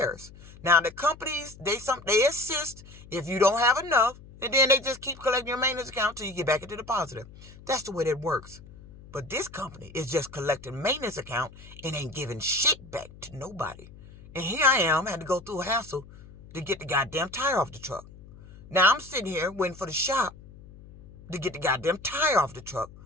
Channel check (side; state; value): left; noise; hum, 20 dB below the sound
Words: Now, the companies, they assist if you don't have enough, and then they just keep collecting your maintenance account till you get back into the positive. That's the way that works. But this company is just collecting maintenance account and ain't giving shit back to nobody. And here I am, had to go through a hassle to get the goddamn tire off the truck. Now I'm sitting here waiting for the shop to get the goddamn tire off the truck.